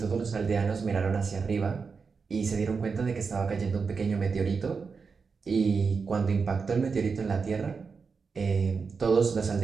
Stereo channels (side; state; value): left; quieter; 5.2 dB